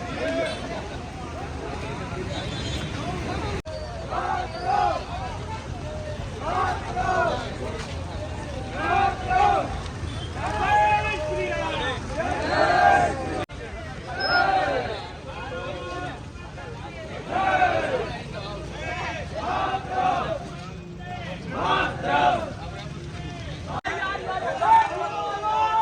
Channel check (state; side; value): identical; both; correlation 1.00